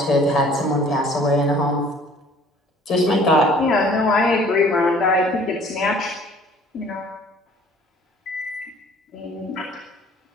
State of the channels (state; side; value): normal; both; correlation 0.53